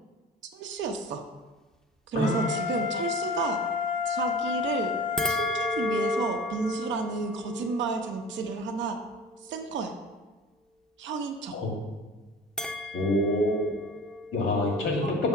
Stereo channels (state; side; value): normal; both; correlation 0.38